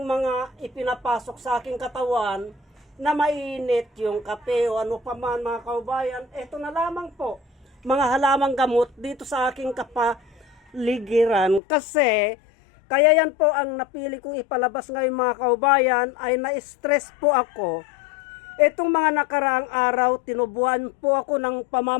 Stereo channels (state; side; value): drops out; right; at 11.6 s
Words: mga ipinapasok sa aking katawan na mainit yung kape o ano pa man mga kaubayan. Ito na lamang po, mga halamang gamot dito sa aking kapaligiran. Kasi, kaya yan po ang napili kong ipalabas ngayon mga kaubayan ay na-stress po ako. Itong mga nakaraang araw, tinubuan po ako ng